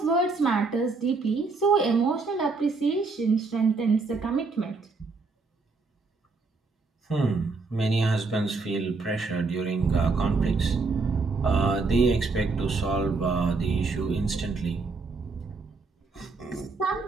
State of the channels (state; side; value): quieter; left; 4.1 dB